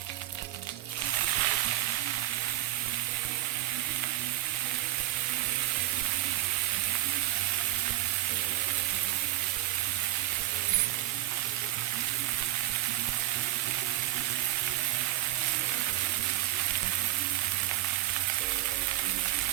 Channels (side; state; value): left; quieter; 15.9 dB